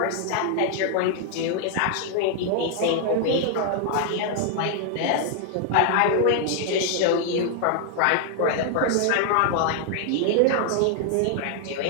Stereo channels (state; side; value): different; both; correlation 0.00